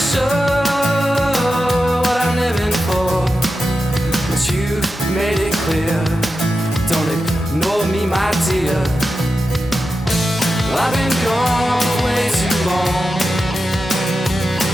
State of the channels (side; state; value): both; normal; correlation 0.90